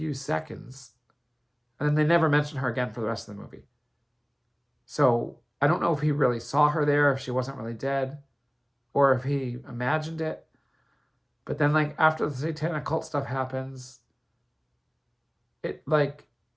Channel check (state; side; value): identical; both; correlation 1.00